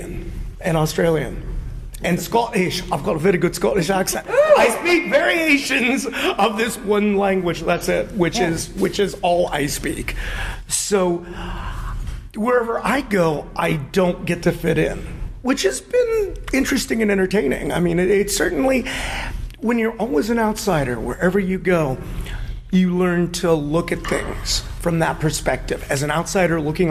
and Australian and Scottish. I've got a very good Scottish accent. I speak variations of this one language. That's it, which is all I speak. So wherever I go, I don't get to fit in, which has been interesting and entertaining. I mean, it's certainly, when you're always an outsider, wherever you go, you learn to look at things from that perspective, as an outsider looking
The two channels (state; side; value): identical; both; correlation 1.00